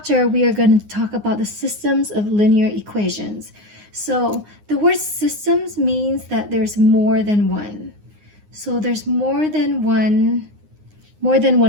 we are going to talk about the systems of linear equations. So the word systems means that there's more than one. So there's more than one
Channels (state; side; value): late; left; 9.7 ms